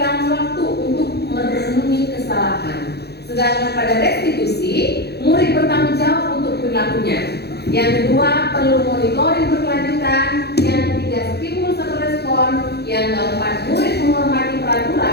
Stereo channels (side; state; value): right; late; 0.48 ms